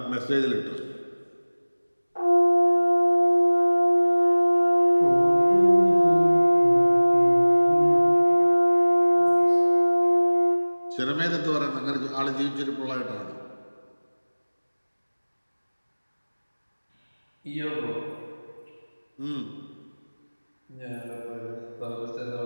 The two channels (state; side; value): inverted; both; correlation -1.00